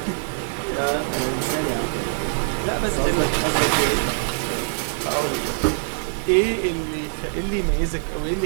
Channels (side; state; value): left; silent; digital silence